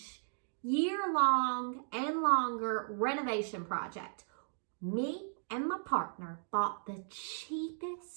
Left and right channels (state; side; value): silent; left; digital silence